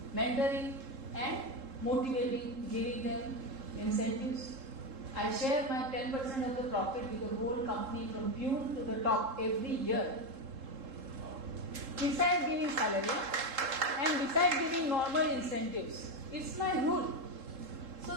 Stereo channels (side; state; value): left; late; 3.7 ms